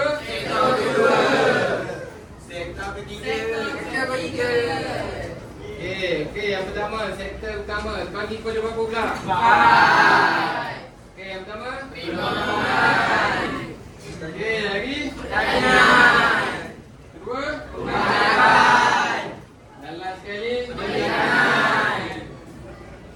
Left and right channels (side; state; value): both; identical; correlation 1.00